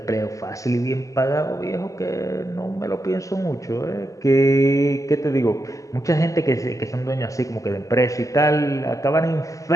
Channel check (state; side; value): late; right; 0.16 ms